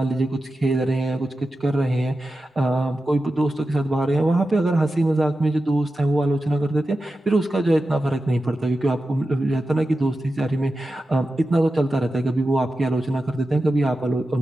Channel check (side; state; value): both; normal; correlation 0.92